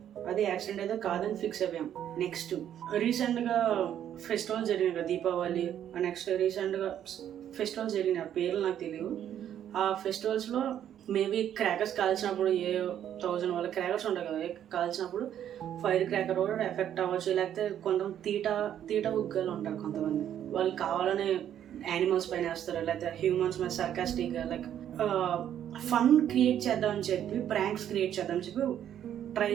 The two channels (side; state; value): left; quieter; 10.3 dB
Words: అది యాక్సిడెంట్ అయితే కాదని ఫిక్స్ అయ్యాం. నెక్స్ట్ రీసెంట్గా ఫెస్టివల్స్ జరిగినాయి కదా, దీపావళి, నెక్స్ట్ రీసెంట్గా ఫెస్టివల్స్ జరిగినాయి, ఆ పేర్లు నాకు తెలియదు. ఆ ఫెస్టివల్స్లో మేబీ క్రాకర్స్ కాల్చినప్పుడు 1000 వాళ్ళ క్రాకర్స్ ఉంటాయి కదా, కాల్చినప్పుడు ఫైర్ క్రాకర్ కూడా ఎఫెక్ట్ అవ్వచ్చు. లేకపోతే కొంతమంది తీట ఉగ్గాలు ఉంటారు, కొంతమంది వాళ్ళు కావాలని యానిమల్స్ పైన వేస్తారు, లేకపోతే హ్యూమన్స్ మీద సర్కాస్టిక్గా లైక్ ఫన్ క్రియేట్ చేద్దామని చెప్పి, ప్రాంక్స్ క్రియేట్ చేద్దామని చెప్పి ట్రై